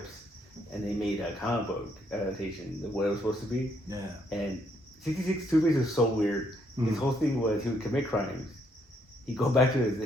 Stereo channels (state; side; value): normal; both; correlation 0.72